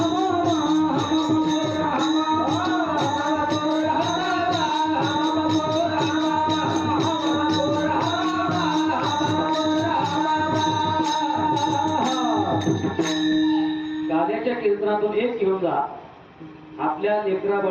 गाद्याच्या कीर्तनातून एक घेऊन जा. आपल्या लेकरा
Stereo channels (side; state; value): both; identical; correlation 1.00